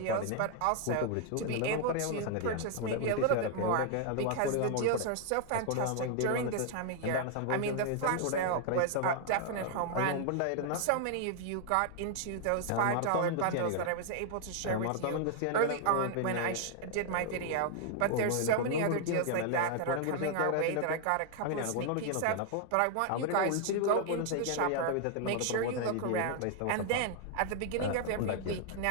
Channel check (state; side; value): different; both; correlation 0.00